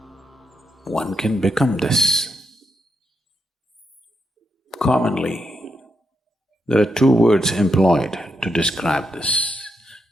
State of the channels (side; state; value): both; normal; correlation 0.82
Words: One can become this. Commonly, there are two words employed to describe this.